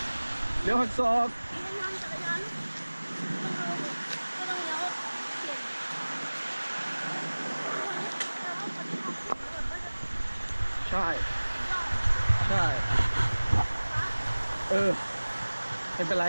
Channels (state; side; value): inverted; both; correlation -1.00